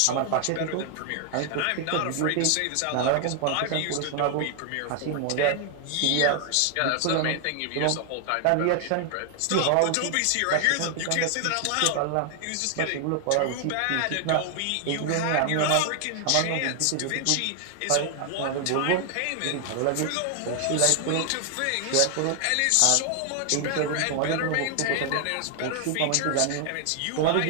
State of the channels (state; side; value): different; both; correlation 0.00